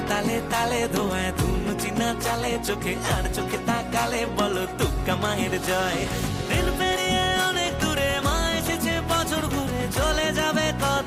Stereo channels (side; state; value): both; identical; correlation 1.00